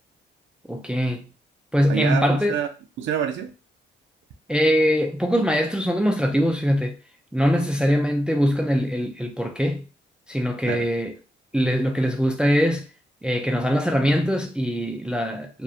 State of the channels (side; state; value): both; normal; correlation 0.87